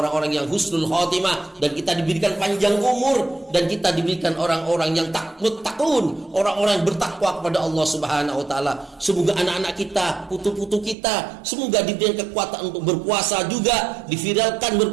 yang husnul khotimah, dan kita diberikan panjang umur, dan kita diberikan orang-orang yang takun, orang-orang yang bertakwa kepada Allah Subhanahu wa taala. Semoga anak-anak kita, putu-putu kita, semoga diberikan kekuatan untuk berpuasa juga, diviralkan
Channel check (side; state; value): left; drops out; at 11.0 s